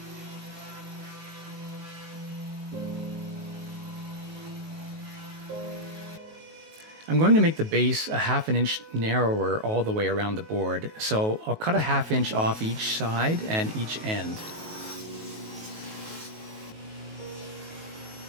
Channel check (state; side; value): late; left; 19 ms